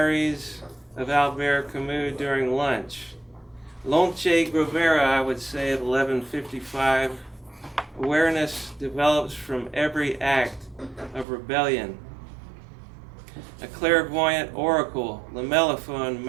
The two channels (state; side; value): drops out; left; at 11.2 s